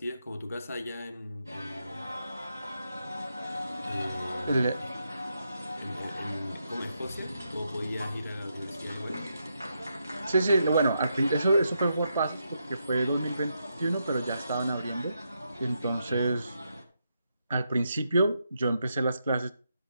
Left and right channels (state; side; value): inverted; both; correlation -0.82